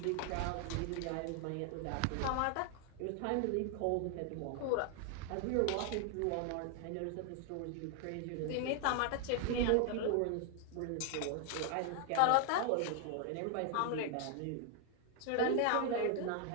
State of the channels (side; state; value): both; different; correlation 0.00